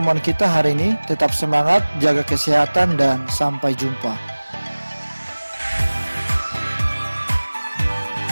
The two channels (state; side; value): inverted; both; correlation -1.00